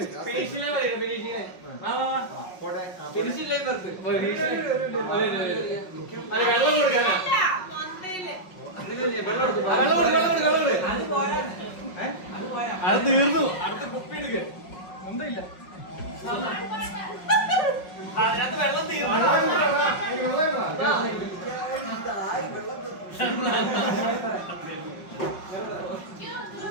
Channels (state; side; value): late; right; 5.4 ms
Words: അത് തീർന്നു. അടുത്ത കുപ്പി എടുക്ക ഒന്നുമില്ല അതിനകത്ത് വെള്ളം തീർന്നു.